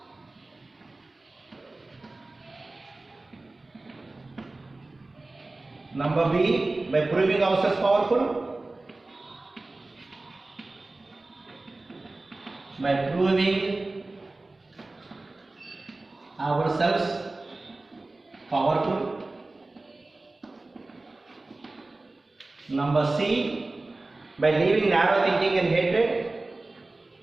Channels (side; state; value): left; quieter; 3.1 dB